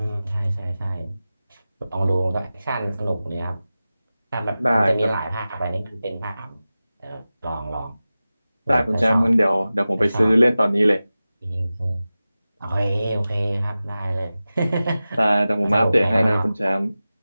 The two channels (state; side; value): inverted; both; correlation -0.95